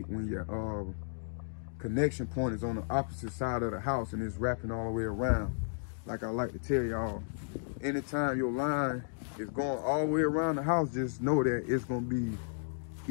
when your connection point is on the opposite side of the house and it's wrapping all the way around. Like I like to tell y'all, anytime your line is going all the way around the house, just know that it's gonna be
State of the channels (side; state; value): right; silent; digital silence